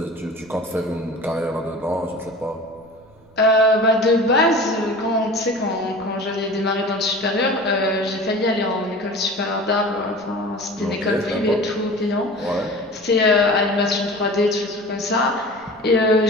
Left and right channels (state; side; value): noise; right; rumble, 28 dB below the sound